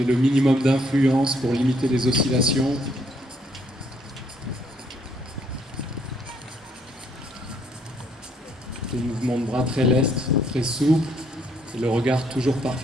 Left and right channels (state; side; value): normal; both; correlation 0.68